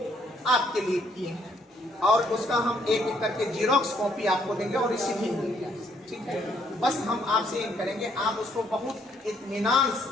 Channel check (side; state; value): both; normal; correlation 0.69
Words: आपके लिए किए हैं और उसका हम एक एक करके जीरोक्स कॉपी आपको देंगे और रिसीव देंगे आपसे, ठीक है। बस हम आपसे ये करेंगे, आप उसको बहुत इत्मीनान से